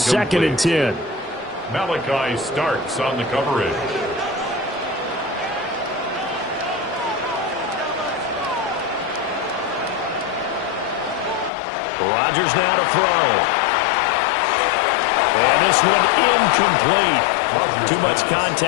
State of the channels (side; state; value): right; drops out; at 11.5 s